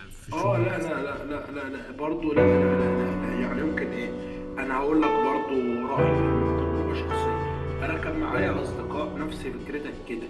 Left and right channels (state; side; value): identical; both; correlation 1.00